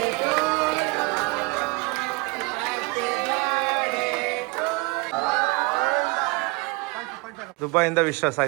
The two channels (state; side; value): quieter; left; 25.6 dB